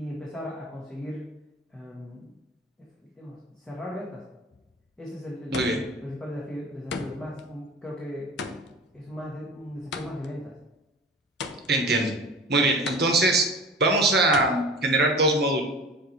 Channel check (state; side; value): normal; both; correlation 0.38